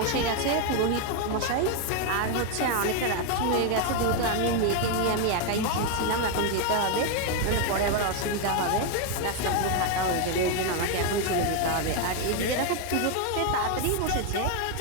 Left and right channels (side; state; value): both; different; correlation 0.01